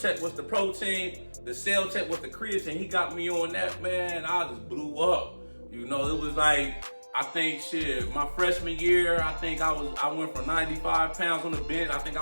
was the protein. The Cell Tech was the creatine. He got me on that, man. I just blew up. You know, it was like, I think my freshman year, I think I went from 95 pounds on the bench. I think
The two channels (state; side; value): inverted; both; correlation -1.00